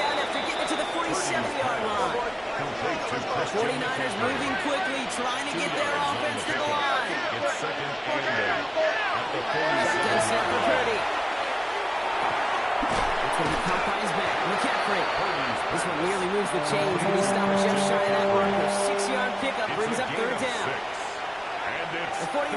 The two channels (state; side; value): identical; both; correlation 1.00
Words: after getting it to the 47-yard line. 49ers moving quickly, trying to get their offense to the line. It's 2nd and 8. Shotgun snap for Purdy. It's going to be caught by his back. McCaffrey. This one nearly moves the chains. He'll be stopped just shy of that marker. 6-yard pickup brings up 3rd down. The